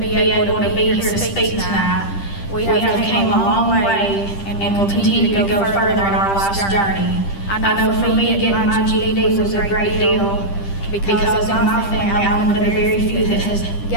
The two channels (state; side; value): late; right; 10 ms